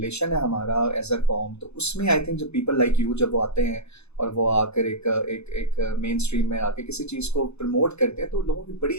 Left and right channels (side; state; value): right; late; 0.80 ms